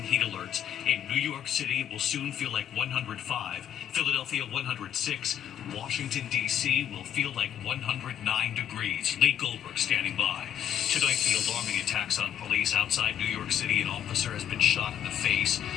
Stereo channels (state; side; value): quieter; right; 10.1 dB